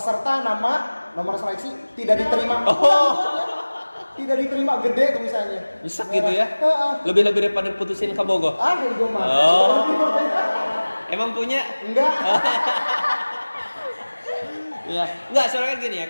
nama nomor seleksi tidak diterima. Oh. Tidak diterima, gede tulisannya. Bisa gitu ya? Lebih-lebih daripada putusin ke Bogor. Gue mah. Oh. Emang punya? Enggak. Ya, enggak, soalnya kan gini ya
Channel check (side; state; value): both; inverted; correlation -1.00